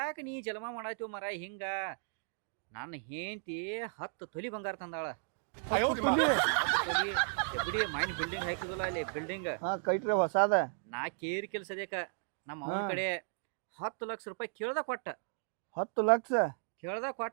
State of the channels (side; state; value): left; silent; digital silence